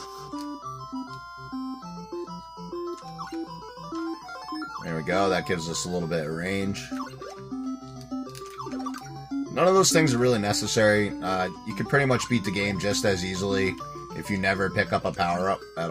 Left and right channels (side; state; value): both; identical; correlation 1.00